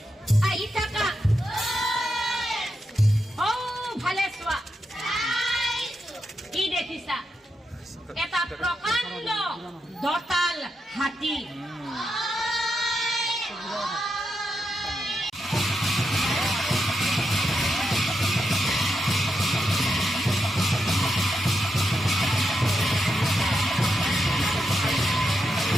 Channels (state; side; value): normal; both; correlation 0.85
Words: ও ভালে চোৱা কি দেখিছা এটা প্ৰকাণ্ড দতাল হাতী